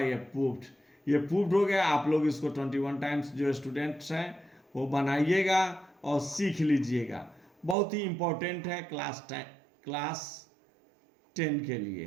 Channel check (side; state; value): left; drops out; at 7.8 s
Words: प्रूफ्ड। ये प्रूफ्ड हो गया। आप लोग इसको 21 टाइम्स जो स्टूडेंट्स हैं वो बनाइएगा और सीख लीजिएगा। बहुत ही इंपॉर्टेंट है क्लास 10 के लिए।